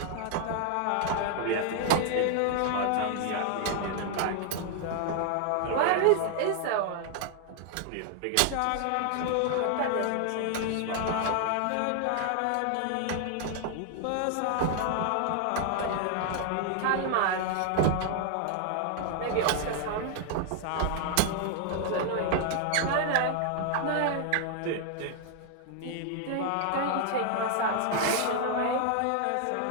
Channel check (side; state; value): both; different; correlation 0.00